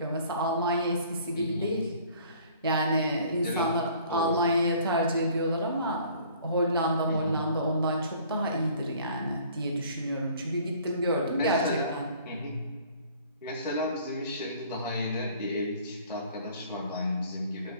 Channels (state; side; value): inverted; both; correlation -0.53